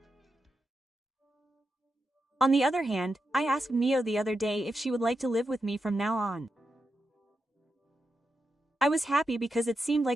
On the other hand, I asked Mio the other day if she would like to live with me from now on. I was happy because it seemed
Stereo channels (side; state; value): both; normal; correlation 0.87